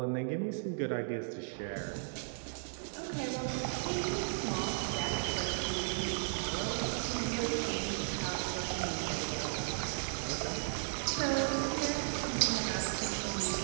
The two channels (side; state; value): left; silent; digital silence